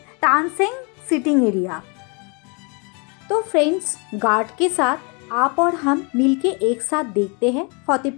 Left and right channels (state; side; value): quieter; right; 32.9 dB